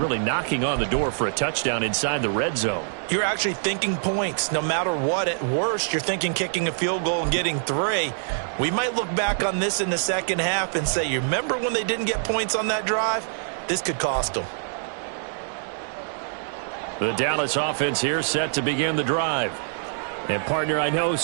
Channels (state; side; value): silent; left; digital silence